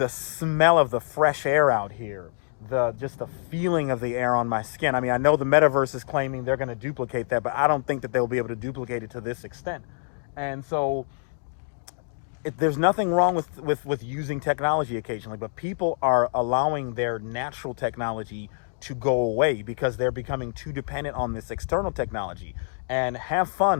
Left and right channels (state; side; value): silent; right; digital silence